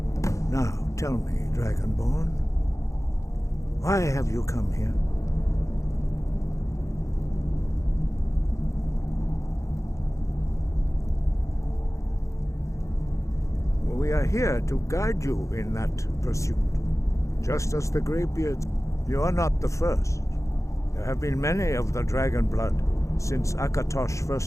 Now, tell me, Dragonborn, why have you come here? We are here to guide you in that pursuit. Just as the Greybeards, you are not the first. There have been many of the dragon blood since Akatosh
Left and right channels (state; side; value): late; right; 0.15 ms